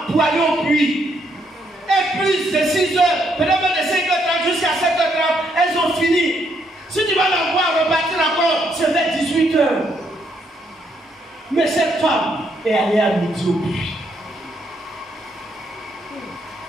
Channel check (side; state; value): both; normal; correlation 0.74